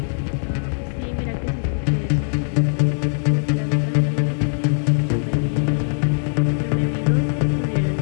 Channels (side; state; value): right; silent; digital silence